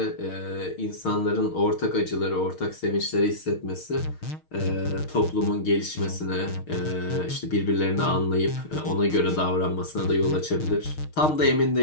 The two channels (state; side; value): late; right; 6.5 ms